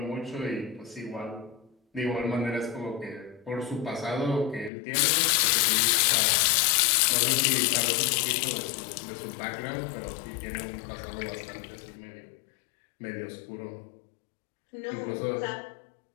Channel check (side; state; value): right; drops out; at 4.7 s